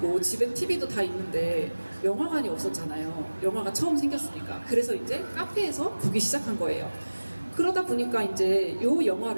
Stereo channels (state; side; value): inverted; both; correlation -1.00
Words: 집엔 TV도 다 있는데 영화관이 없었잖아요. 영화가 처음 생겼으니까. 그래서 이제 카페에서 보기 시작한 거예요. 그러다 보니까 이제 요